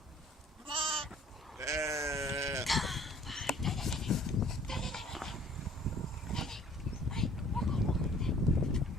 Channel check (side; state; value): both; normal; correlation 0.55